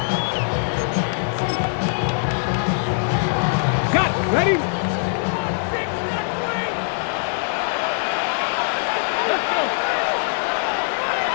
Got it. Ready? Let's go.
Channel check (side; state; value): right; silent; digital silence